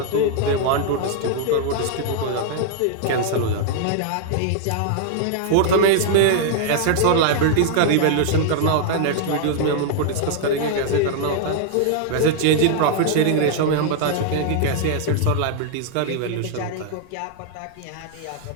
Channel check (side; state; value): both; different; correlation 0.00